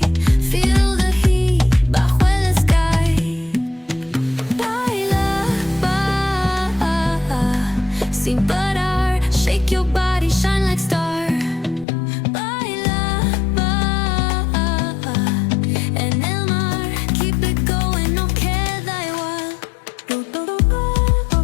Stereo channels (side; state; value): right; drops out; at 11.9 s